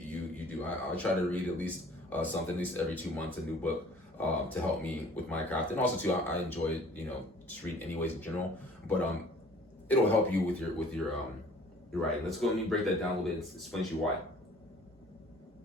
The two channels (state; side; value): normal; both; correlation 0.52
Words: do. I try to read at least something at least every 2 months, a new book to help me with my craft. And also too, I enjoy just read anyways in general, but it'll help you with your writing. Let me break that down a little bit and explain to you why.